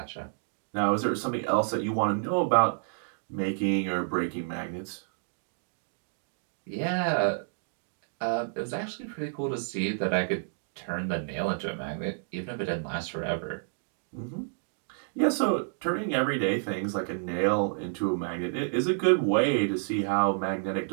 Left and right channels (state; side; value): silent; left; digital silence